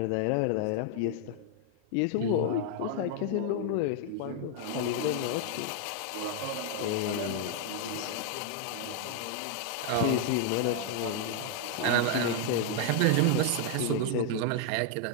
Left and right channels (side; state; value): both; different; correlation 0.00